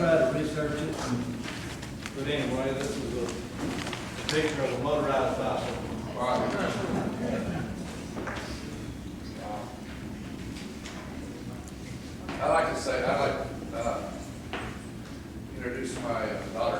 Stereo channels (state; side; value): identical; both; correlation 1.00